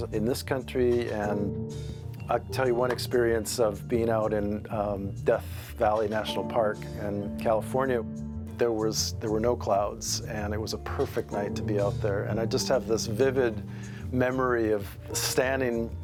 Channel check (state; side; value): identical; both; correlation 1.00